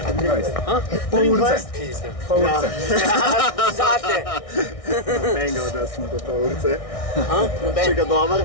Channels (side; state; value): right; late; 1.6 ms